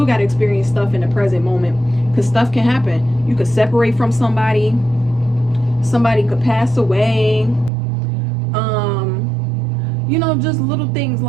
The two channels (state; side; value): drops out; left; at 7.7 s